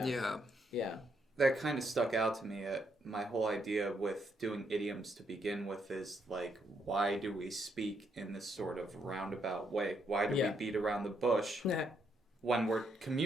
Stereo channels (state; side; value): normal; both; correlation 0.75